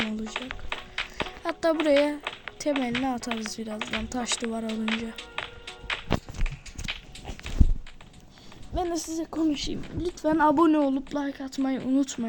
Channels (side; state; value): both; identical; correlation 1.00